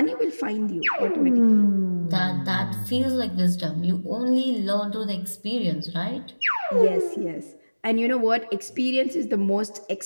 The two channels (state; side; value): inverted; both; correlation -1.00